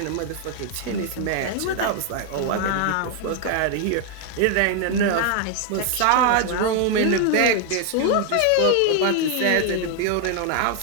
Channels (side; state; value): both; different; correlation 0.00